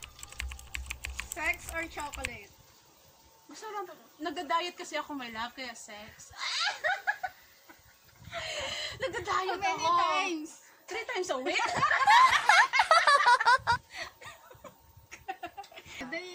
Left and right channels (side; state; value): both; identical; correlation 1.00